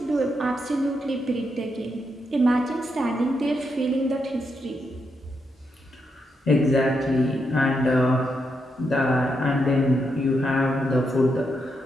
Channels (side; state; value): both; normal; correlation 0.82